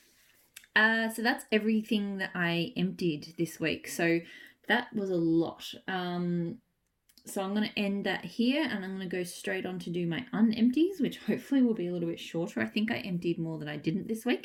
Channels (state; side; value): identical; both; correlation 1.00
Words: So that's everything that I emptied this week. So that was a lot. So I'm going to end that here, and I'm going to go straight on to do my unempties, which hopefully will be a little bit shorter. I think I emptied more than I didn't this